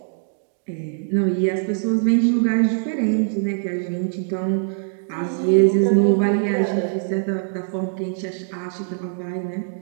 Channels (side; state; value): left; silent; digital silence